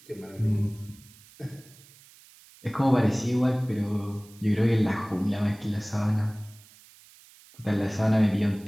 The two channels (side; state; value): right; noise; hiss, 24 dB below the sound